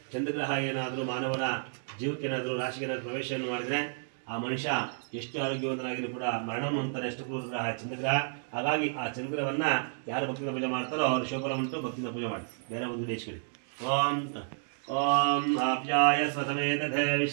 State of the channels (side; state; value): left; silent; digital silence